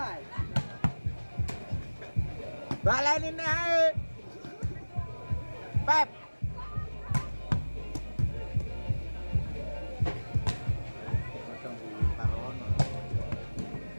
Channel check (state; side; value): inverted; both; correlation -1.00